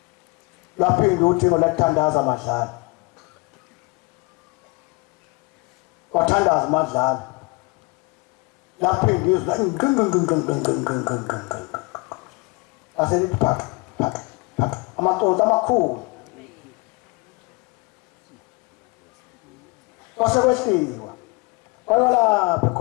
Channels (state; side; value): quieter; right; 27.5 dB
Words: laphinda uthingo lathandaza madlala wathandaza madlala laphinda izwi aselithi phaka amaconsi amakhulu kwasekwehliwa kwayo lapha